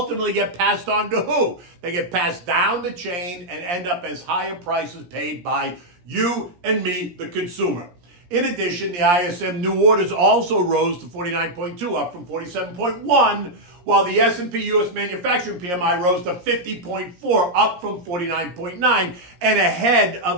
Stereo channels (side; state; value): left; late; 17 ms